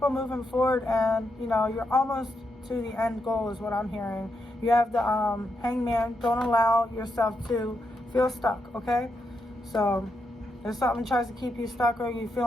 on moving forward, and you know, you're almost to the end goal is what I'm hearing. You have the Hangman. Don't allow yourself to feel stuck, okay? So if something tries to keep you stuck, or you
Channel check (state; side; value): normal; both; correlation 0.83